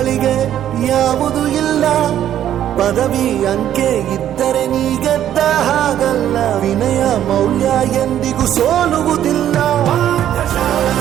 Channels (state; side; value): quieter; left; 11.1 dB